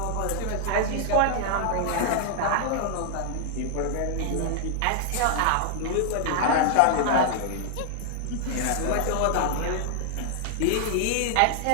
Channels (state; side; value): different; both; correlation -0.01